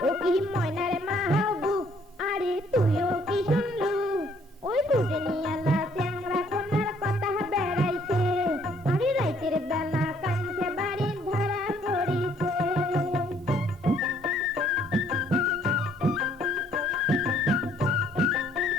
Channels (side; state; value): both; normal; correlation 0.64